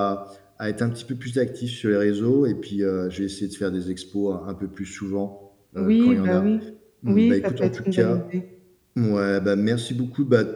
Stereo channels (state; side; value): identical; both; correlation 1.00